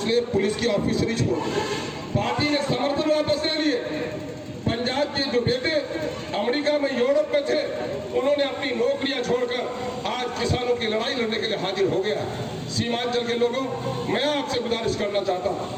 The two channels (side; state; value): both; identical; correlation 1.00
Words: पुलिस की ऑफिसरी छोड़ दी। पार्टी ने समर्थन वापस ले लिए। पंजाब के जो बेटे अमेरिका में, यूरोप में थे, उन्होंने अपनी नौकरियां छोड़कर आज किसानों की लड़ाई लड़ने के लिए हाजिर हो गया। सीमांचल के लोगों, मैं आपसे गुजारिश करना चाहता